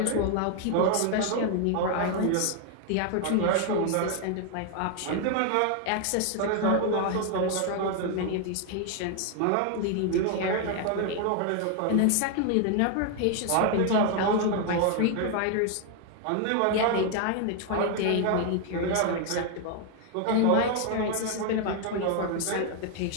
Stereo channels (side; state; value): both; different; correlation 0.00